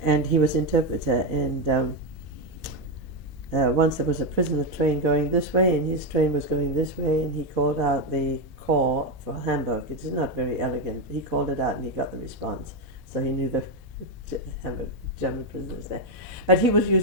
and he was interpreter. And once there was a prisoner train going this way, and his train was going this way, and he called out the call for Hamburg. It's not very elegant. He called it out, and he got the response. So he knew the German prisoners there. But he was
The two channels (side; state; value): both; normal; correlation 0.08